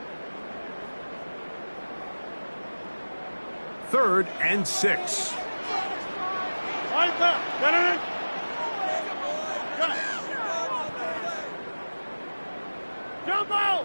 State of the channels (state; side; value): inverted; both; correlation -1.00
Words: Third and 6. Jump